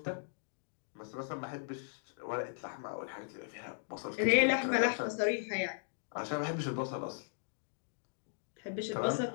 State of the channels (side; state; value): right; silent; digital silence